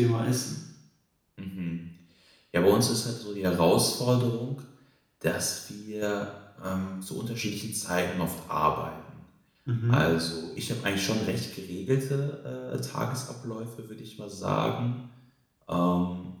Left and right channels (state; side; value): identical; both; correlation 1.00